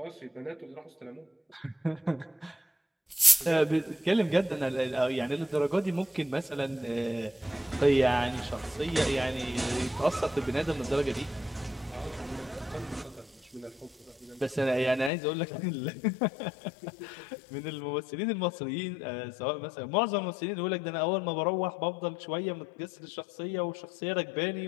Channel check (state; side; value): drops out; right; at 15.1 s